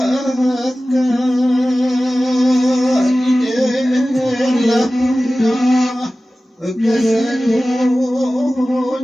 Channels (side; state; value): both; normal; correlation 0.96